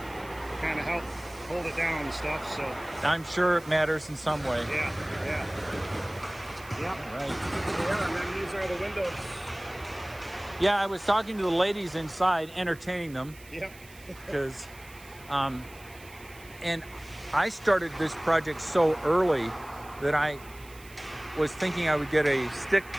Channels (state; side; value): noise; right; hiss, 22 dB below the sound